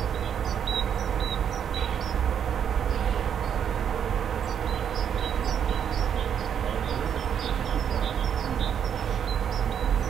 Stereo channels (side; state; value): left; quieter; 8.4 dB